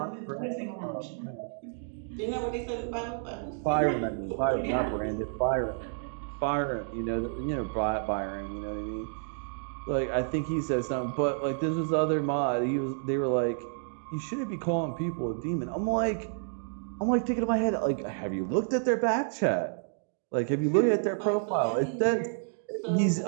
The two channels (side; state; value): left; silent; digital silence